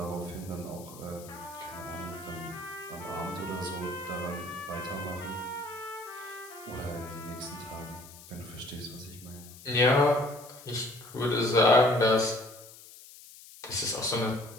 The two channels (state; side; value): noise; left; hiss, 18 dB below the sound